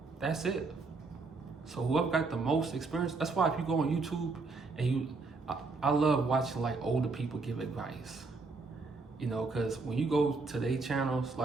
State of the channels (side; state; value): left; quieter; 3.9 dB